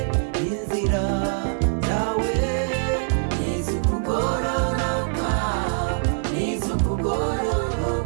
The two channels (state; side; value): silent; left; 58 dB below the other